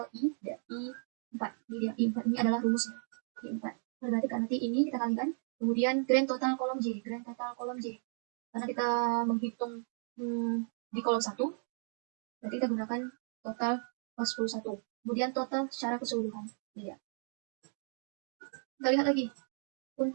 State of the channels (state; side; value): silent; left; 55 dB below the other